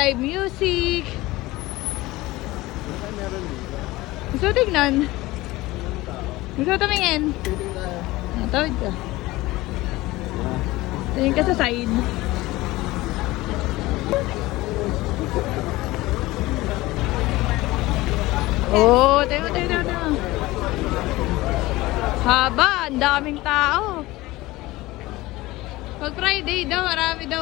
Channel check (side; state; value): right; quieter; 19.2 dB